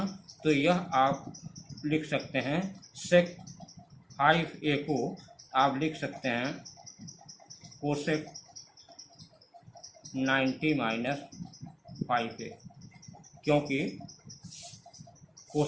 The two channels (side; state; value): both; identical; correlation 1.00